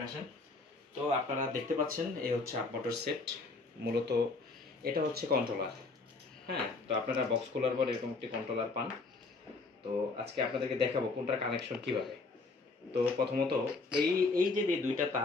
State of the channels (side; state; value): right; quieter; 3.8 dB